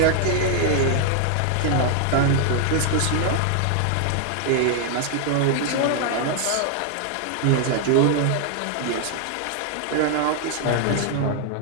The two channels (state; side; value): different; both; correlation 0.00